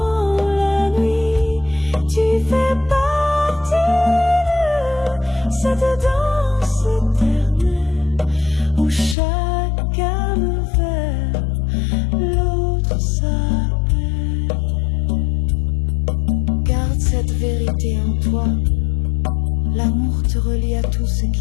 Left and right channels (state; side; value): drops out; right; at 9.2 s